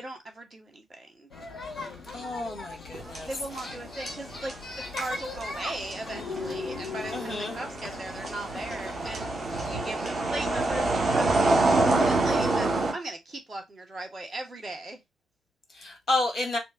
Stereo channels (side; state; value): both; normal; correlation 0.83